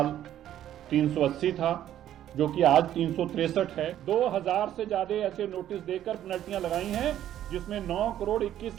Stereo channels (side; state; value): left; quieter; 11.6 dB